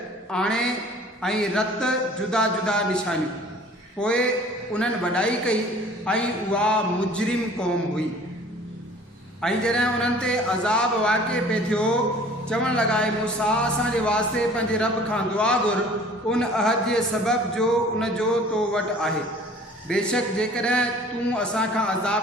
आणे ऐं रत जुदा जुदा निशानियूं। पोइ उन्हनि वॾाई कई ऐं उहा मुजरिम क़ौम हुई। ऐं जॾहिं उन्हनि ते अज़ाब वाक़िअ पे थियो, चवणु लॻा, मूसा असांजे वास्ते पंहिंजे रब खां दुआ घुर, उन अहद जे सबब जो उन जो तो वटि आहे। बेशक जेकॾहिं तूं असांखां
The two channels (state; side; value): normal; both; correlation 0.49